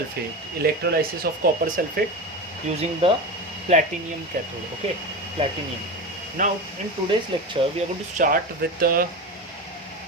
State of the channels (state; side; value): normal; both; correlation 0.23